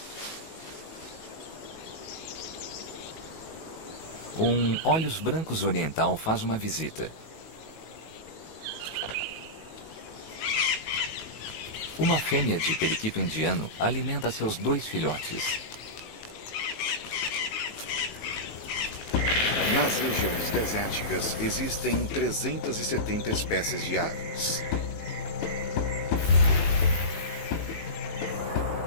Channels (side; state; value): right; late; 19 ms